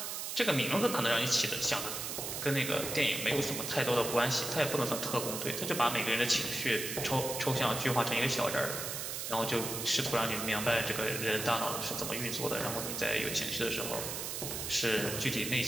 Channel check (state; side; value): noise; right; hiss, 4 dB below the sound